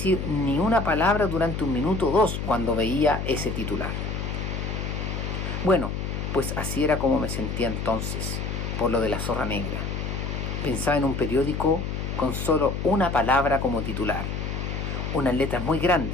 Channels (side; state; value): left; noise; hum, 3 dB below the sound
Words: ni una palabra durante 1 minuto o 2 cuando veía ese titular. Bueno, pues así era como me sentía entonces, por lo de la zorra negra. Pensaba en un periódico con solo una palabra como titular, unas letras muy